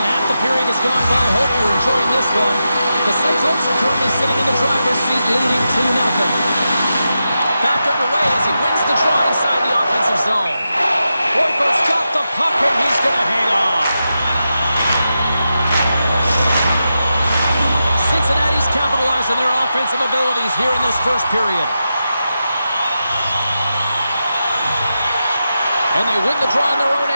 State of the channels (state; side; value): inverted; both; correlation -0.89